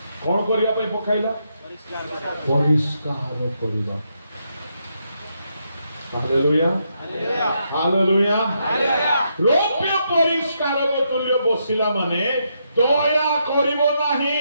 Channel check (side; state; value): both; inverted; correlation -0.79